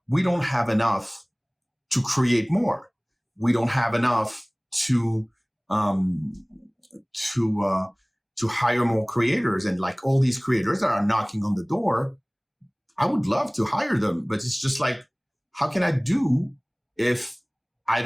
we don't have enough to create more. We don't have enough to hire more creators. And like all these creators that are knocking on the door, I would love to hire them, but it's just like, how can I do if I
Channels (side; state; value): both; identical; correlation 1.00